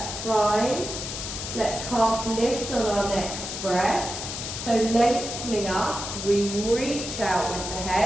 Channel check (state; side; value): noise; left; hiss, 6 dB below the sound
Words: fine. Let's half lift on our next breath. So lengthening up, we reach out with the